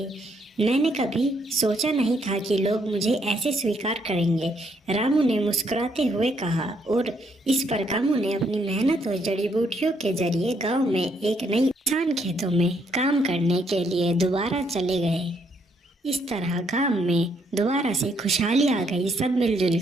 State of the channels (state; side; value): normal; both; correlation 0.72